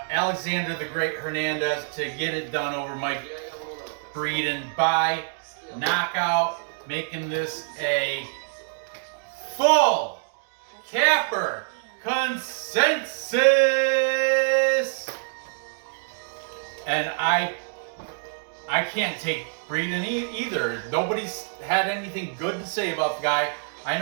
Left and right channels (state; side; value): silent; left; digital silence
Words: the Great Hernandez to get it done over Mike Breeden by knockout, making this a full capper consensus. And I can't take Breeden either. Nobody's had anything good to say about the guy. I